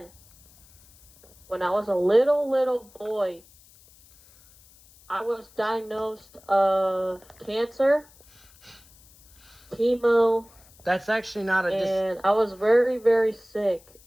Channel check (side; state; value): left; noise; hiss, 27 dB below the sound